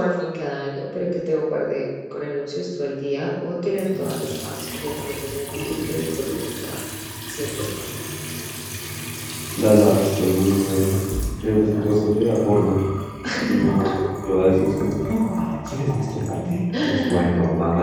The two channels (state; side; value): identical; both; correlation 1.00